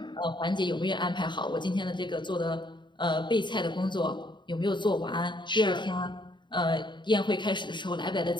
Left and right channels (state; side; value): late; right; 0.22 ms